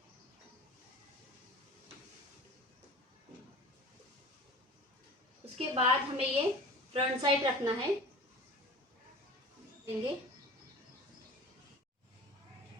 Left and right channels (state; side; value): normal; both; correlation 0.39